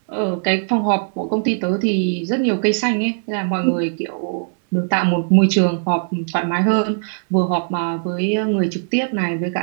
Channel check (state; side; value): silent; left; digital silence